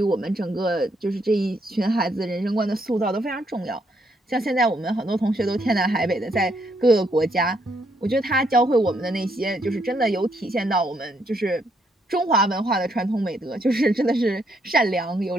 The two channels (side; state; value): both; normal; correlation 0.74